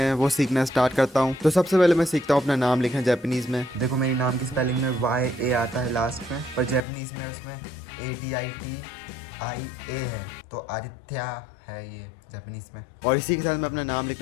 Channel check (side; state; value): right; drops out; at 6.8 s